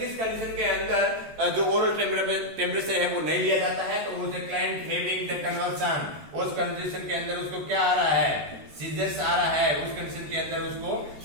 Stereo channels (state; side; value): late; left; 14 ms